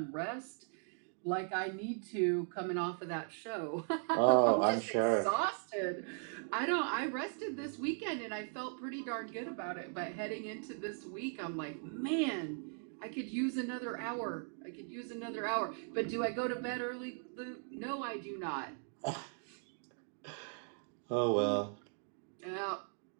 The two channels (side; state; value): left; silent; 52 dB below the other